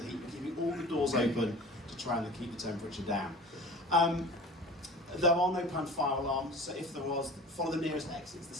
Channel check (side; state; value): both; normal; correlation 0.39